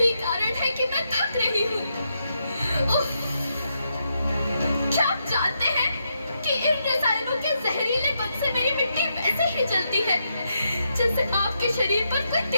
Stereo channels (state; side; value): inverted; both; correlation -0.82